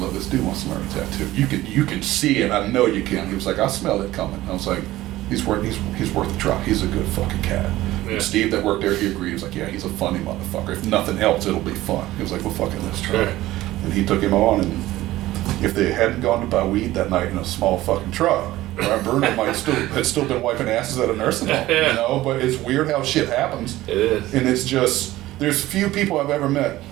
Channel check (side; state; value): left; quieter; 16.3 dB